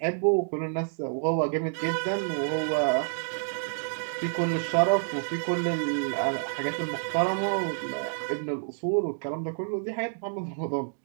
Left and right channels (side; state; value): left; silent; digital silence